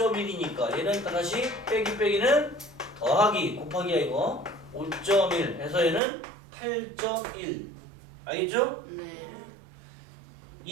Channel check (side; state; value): left; drops out; at 6.0 s